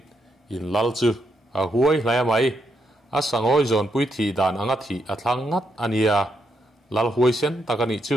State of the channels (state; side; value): normal; both; correlation 0.79